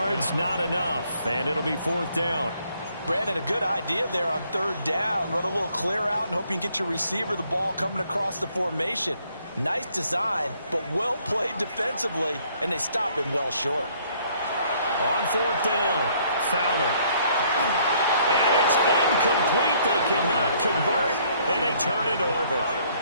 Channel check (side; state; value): both; inverted; correlation -0.65